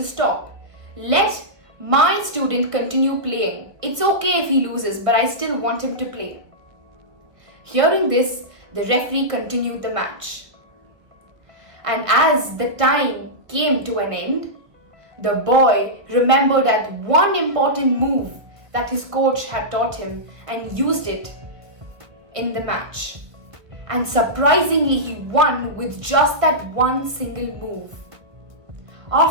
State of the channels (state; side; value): late; left; 1.4 ms